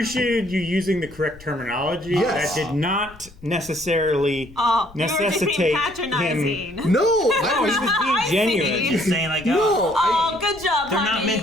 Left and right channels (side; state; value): left; noise; rumble, 22 dB below the sound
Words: you using the correct terminology. Yes. That did not necessarily Oh, necessitate you were just being patronizing. No, No, he was being genuine. He's saying like, No, Oh, good job, they're not honey.